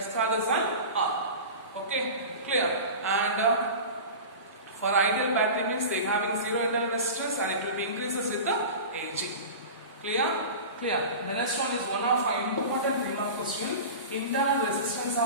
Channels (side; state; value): both; inverted; correlation -0.32